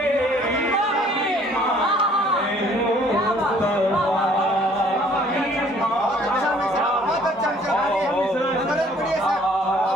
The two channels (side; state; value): both; normal; correlation 0.58